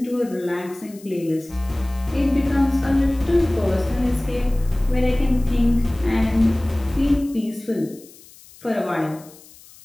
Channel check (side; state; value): left; noise; hiss, 23 dB below the sound